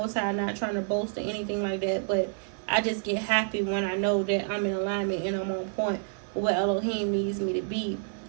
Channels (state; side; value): silent; left; 59 dB below the other